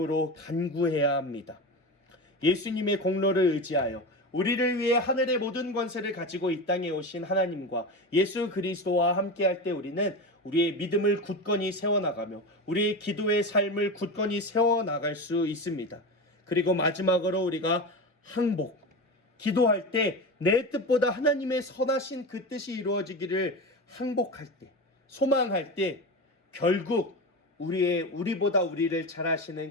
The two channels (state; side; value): normal; both; correlation 0.24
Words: 간구해야 합니다. 예수님의 공로를 의지하여 우리를 위해 하늘의 모든 권세를 가지고 이 땅에 오신 하나님과 예수 그리스도와 함께할 때 우리는 우리의 믿음을 굳건히 세워나가며 우리의 기도의 삶을 굳건히 세워나갈 수 있습니다. 그리고 마지막으로 우리가 항복, 기도할 때 내 뜻보다 하나님의 선하신 그 뜻이 이루어지기를 항복할 때, 소망할 때 결국 우리보다 우리를 잘